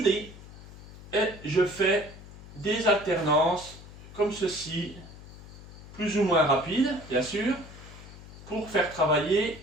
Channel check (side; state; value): left; noise; hum, 17 dB below the sound